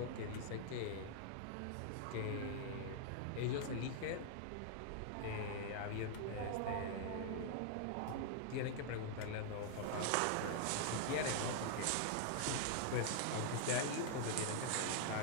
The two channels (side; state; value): both; different; correlation 0.00